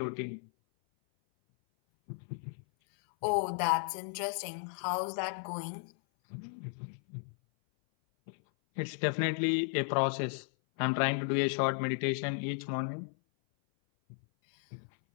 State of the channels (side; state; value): right; silent; 55 dB below the other